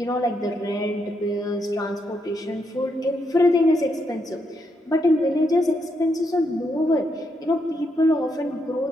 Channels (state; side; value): normal; both; correlation 0.79